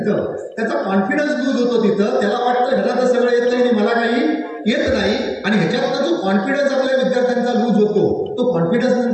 त्याचा कॉन्फिडन्स लूज होतो. तिथं त्याला वाटतं ह्याला तर सगळं येत नाही, मला काही येत नाही आणि ह्याच्यातला जो कॉन्फिडन्स आपल्या विद्यार्थ्यांचा लूज होतो तो कॉन्फिडन्स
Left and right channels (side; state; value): both; identical; correlation 1.00